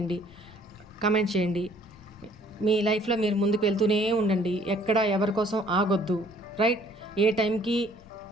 కమెంట్ చేయండి. మీ లైఫ్లో మీరు ముందుకు వెళ్తూనే ఉండండి, ఎక్కడ ఎవరి కోసం ఆగొద్దు. రైట్? ఏ టైంకి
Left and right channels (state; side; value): noise; left; rumble, 24 dB below the sound